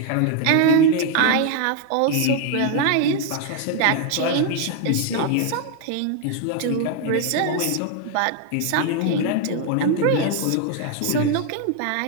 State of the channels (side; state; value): both; different; correlation 0.00